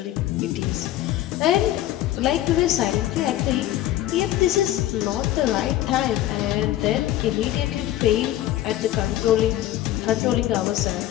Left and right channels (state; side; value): quieter; right; 13.8 dB